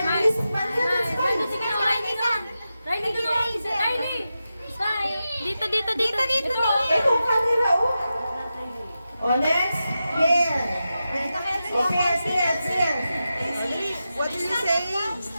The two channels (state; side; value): inverted; both; correlation -0.91